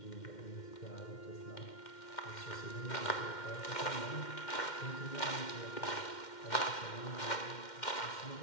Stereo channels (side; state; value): right; late; 2.1 ms